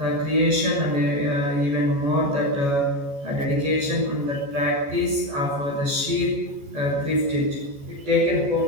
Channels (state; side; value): late; left; 14 ms